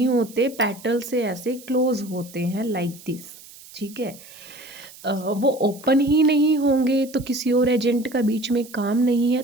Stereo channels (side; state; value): right; noise; hiss, 20 dB below the sound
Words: होते, पेटल से ऐसे क्लोज होते हैं लाइक दिस। ठीक है। वो ओपन ही नहीं होंगे तो किसी और एजेंट का बीच में काम नहीं है।